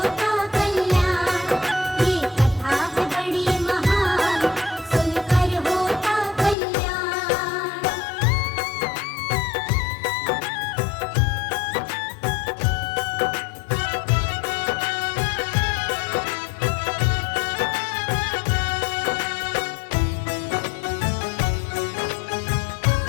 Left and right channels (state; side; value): drops out; right; at 6.6 s